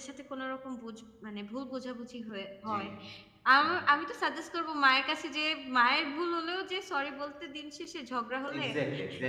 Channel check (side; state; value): both; identical; correlation 1.00